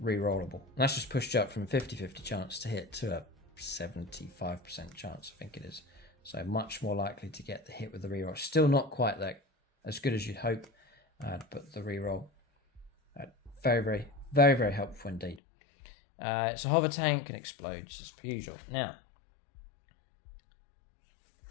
rerollable. And that's just pushed you up from 50-50 chance to hit to a 75% chance, I think it is. So much more likely to get the hit with the reroll. Still not quite that as good as you'd hope, but the reroll, very, very, very, very helpful indeed. It's a hover tank and explodes as per usual. Now,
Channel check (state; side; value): drops out; right; at 15.4 s